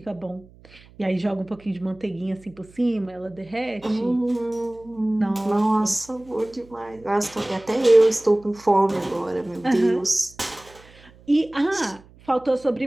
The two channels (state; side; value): noise; right; hum, 25 dB below the sound